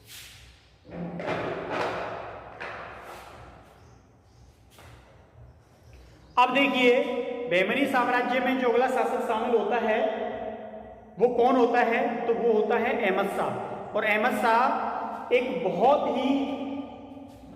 अब देखिए, बहमनी साम्राज्य में जो अगला शासक शामिल होता है वो कौन होता है, तो वो होता है अहमद शाह। और अहमद शाह एक बहुत ही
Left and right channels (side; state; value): both; identical; correlation 1.00